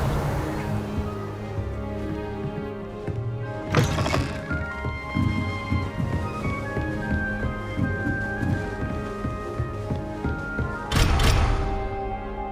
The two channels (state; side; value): identical; both; correlation 1.00